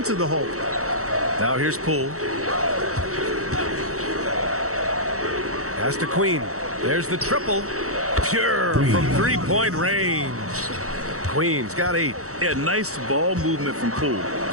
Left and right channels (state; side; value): late; left; 0.65 ms